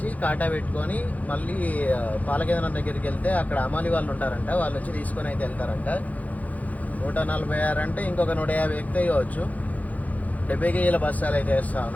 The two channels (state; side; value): late; right; 0.076 ms